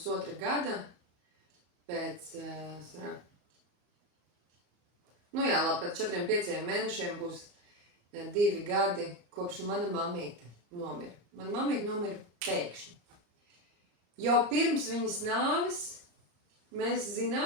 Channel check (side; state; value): left; late; 34 ms